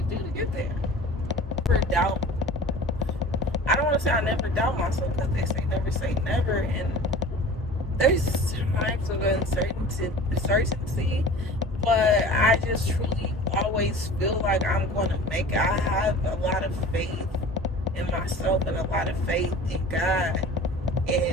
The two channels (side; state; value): both; normal; correlation 0.41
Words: do to get there. I don't want to say I never doubt myself, because they say never say never, and there's times of uncertainty, but I just truly always feel like I'm going to make it. I have a lot of faith in myself and a lot of faith in God,